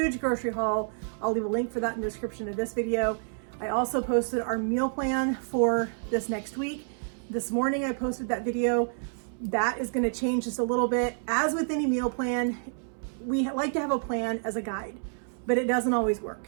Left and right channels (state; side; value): silent; left; 59 dB below the other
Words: grocery haul. I'll leave a link for that in the description of this video. I also posted our meal plan for this next week. This morning I posted that video. That is going to change just a little bit. As with any meal plan, we like to have a plan as a guide, but it doesn't always work.